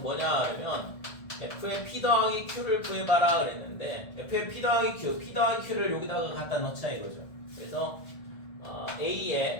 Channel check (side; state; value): right; late; 1.7 ms